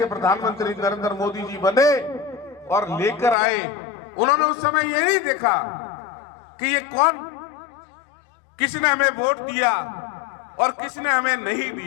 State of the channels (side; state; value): right; drops out; at 3.4 s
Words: प्रधानमंत्री नरेंद्र मोदी जी बने और लेकर आए, उन्होंने उस समय ये नहीं देखा कि ये कौन, किसने हमें वोट दिया और किसने हमें नहीं